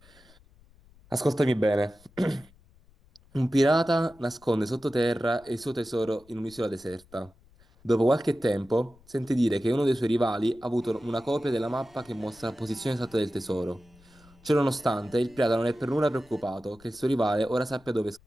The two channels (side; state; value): left; noise; rumble, 28 dB below the sound